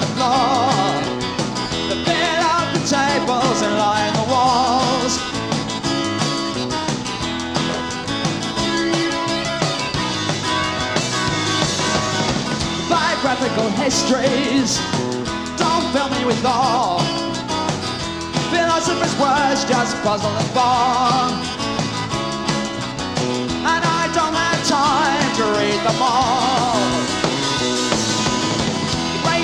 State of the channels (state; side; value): identical; both; correlation 1.00